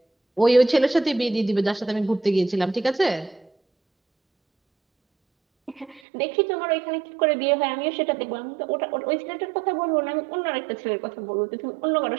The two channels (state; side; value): drops out; left; at 6.0 s